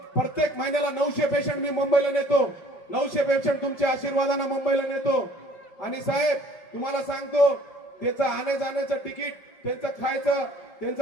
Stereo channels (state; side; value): late; right; 5.1 ms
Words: प्रत्येक महिन्याला 900 पेशंट मी मुंबईला नेतो. 900 पेशंट तुमच्या आशीर्वादाने मुंबईला नेतो. आणि साहेब तुम्हाला सांगतो, त्याचं आणे जाण्याचं तिकीट, त्यांचं खायचं, त्यांचं